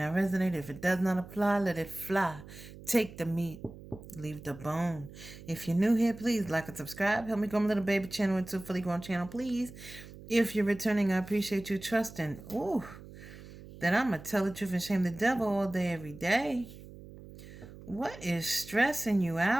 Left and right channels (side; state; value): right; noise; hum, 16 dB below the sound